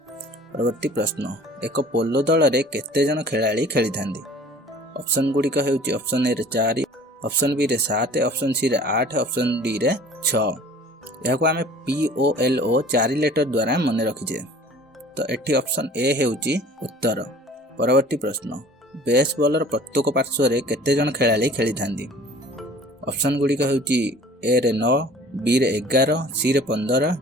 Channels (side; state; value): both; normal; correlation 0.48